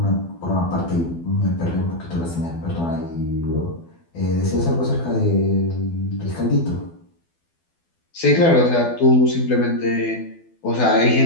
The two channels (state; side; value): late; right; 12 ms